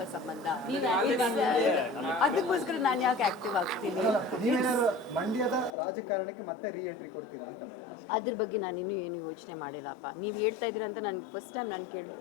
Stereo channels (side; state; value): right; drops out; at 5.8 s